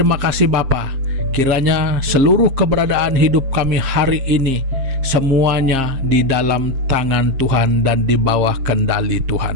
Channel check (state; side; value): late; left; 7.6 ms